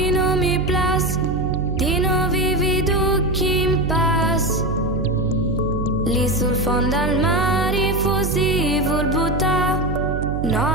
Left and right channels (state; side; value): noise; right; hum, 3 dB below the sound